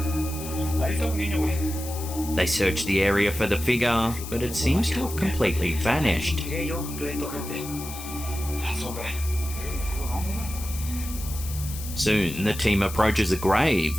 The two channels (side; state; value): left; noise; hiss, 11 dB below the sound